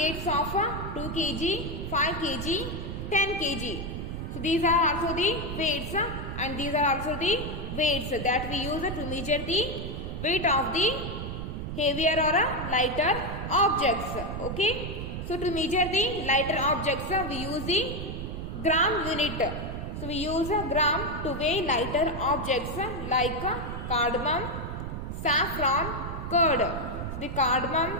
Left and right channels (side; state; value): right; noise; rumble, 6 dB below the sound